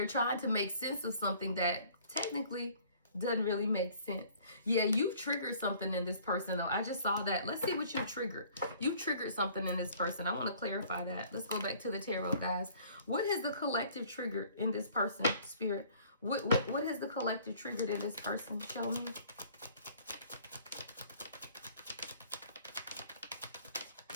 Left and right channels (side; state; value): both; inverted; correlation -0.54